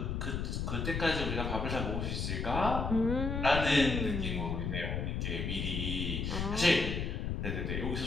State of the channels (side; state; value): left; noise; rumble, 2 dB below the sound